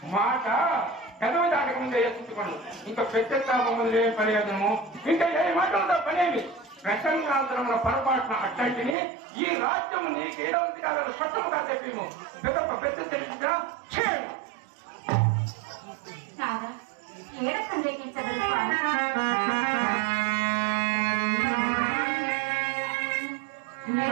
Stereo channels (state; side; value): drops out; left; at 9.0 s